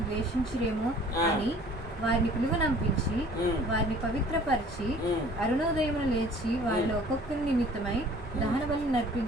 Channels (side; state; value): both; normal; correlation 0.51